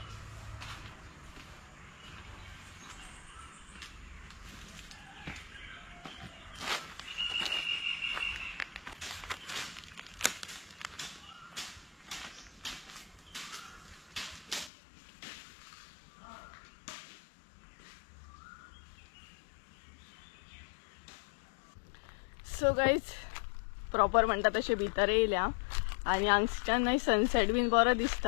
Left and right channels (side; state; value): right; drops out; at 14.7 s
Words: सो गायज प्रॉपर म्हणटा तशें भितर येयल्या आनी हांगच्यान न्हय सनसेट बीन बरो